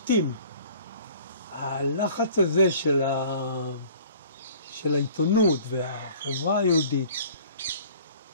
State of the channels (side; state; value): both; inverted; correlation -0.50